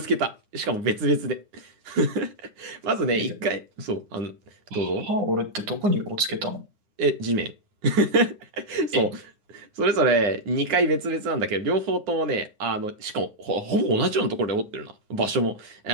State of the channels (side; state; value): left; late; 9.7 ms